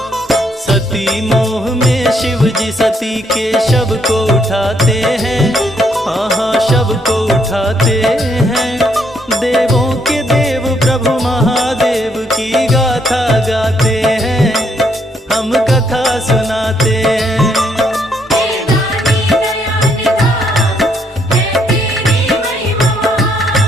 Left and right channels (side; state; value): both; normal; correlation 0.72